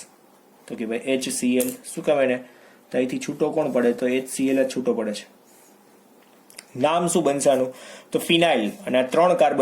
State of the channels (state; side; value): identical; both; correlation 1.00